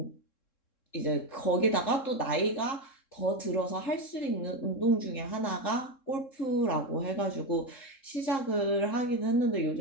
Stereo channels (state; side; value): late; right; 3.7 ms